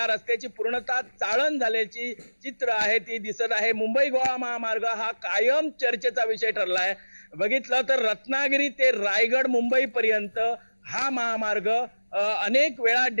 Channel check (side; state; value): both; inverted; correlation -1.00